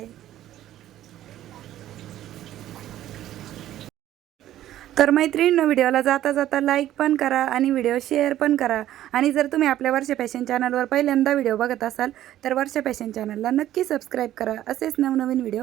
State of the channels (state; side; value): quieter; left; 13.0 dB